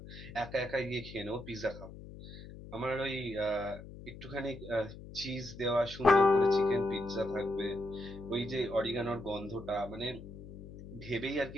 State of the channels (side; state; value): left; noise; hum, 14 dB below the sound